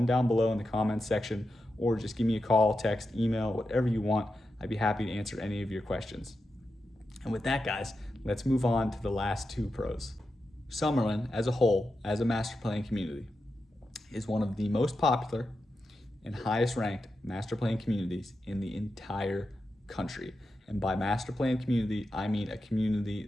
down below in the comments section, or just give me a call, text, email, whatever you want. I'd be happy to answer any of your questions. And with that, guys, let's move on to the last two pros. Summerlin as a whole, as a master plan community, is one of the most popular and highest ranked master plan communities in the entire country. And by master plan community, I mean a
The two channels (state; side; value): normal; both; correlation 0.89